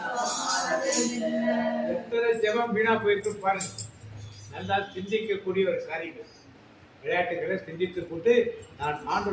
எத்தனை ஜெபம் வீணா போயிருக்கு பாருங்க. நல்லா சிந்திக்கக்கூடிய ஒரு காரியங்கள். விளையாட்டுகளை சிந்தித்து போட்டு நான்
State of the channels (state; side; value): identical; both; correlation 1.00